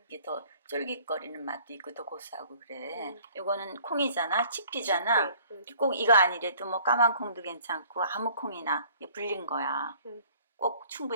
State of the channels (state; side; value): inverted; both; correlation -0.55